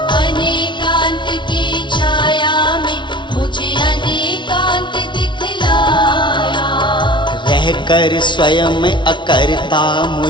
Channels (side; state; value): right; late; 0.23 ms